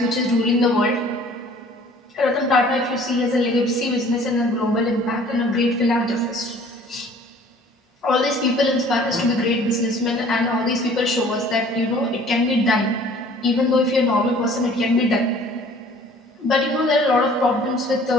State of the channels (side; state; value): both; normal; correlation 0.52